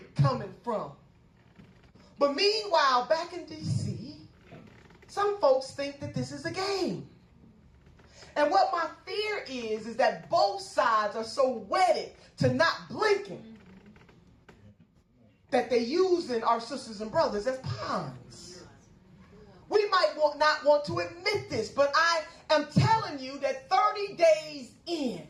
coming from? But meanwhile, back in D.C., some folks think that this is a game. And what my fear is that both sides are so wedded to not blinking that they're using our sisters and brothers as pawns. We might not want to admit this, but I am telling you that 30 days in,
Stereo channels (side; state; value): both; identical; correlation 1.00